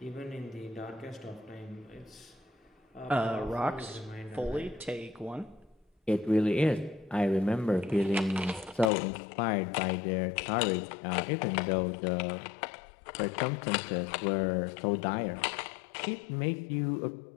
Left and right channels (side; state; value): right; drops out; at 8.9 s